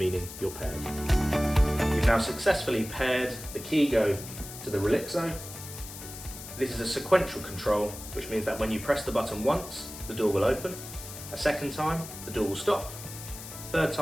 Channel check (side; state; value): left; noise; hiss, 12 dB below the sound